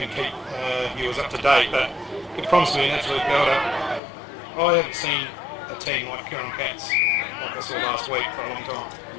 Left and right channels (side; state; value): right; drops out; at 4.0 s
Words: keep viewers up to date, but it promised me an absolute belter. I haven't seen a team like Huron Cats like I saw last week for a long